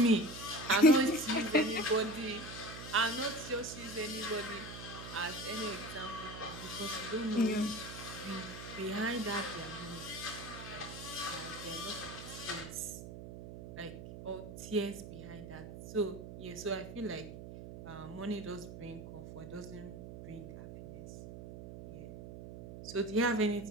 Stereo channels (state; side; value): noise; right; hum, 11 dB below the sound